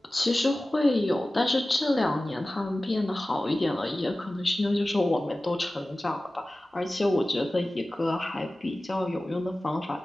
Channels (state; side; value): normal; both; correlation 0.96